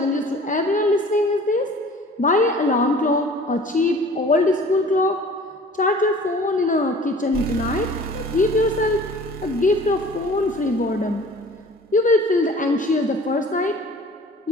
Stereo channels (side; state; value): both; normal; correlation 0.47